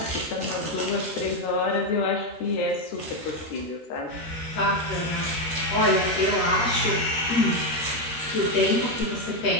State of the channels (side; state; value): right; late; 13 ms